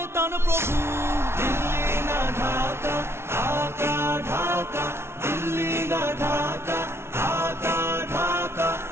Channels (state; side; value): late; left; 0.12 ms